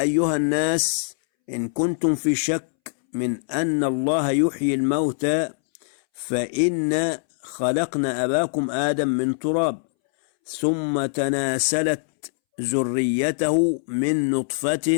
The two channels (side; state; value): right; silent; 63 dB below the other